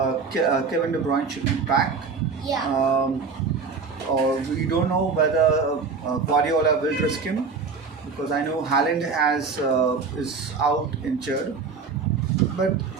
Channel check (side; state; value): left; quieter; 5.0 dB